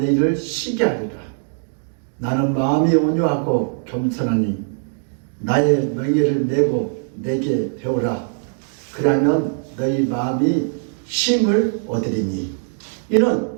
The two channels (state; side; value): silent; left; digital silence